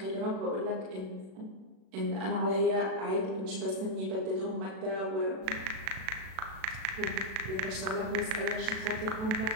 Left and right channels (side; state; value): left; late; 37 ms